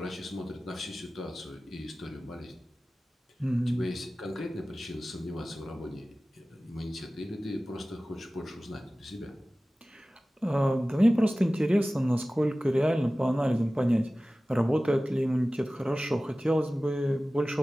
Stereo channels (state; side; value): normal; both; correlation 0.97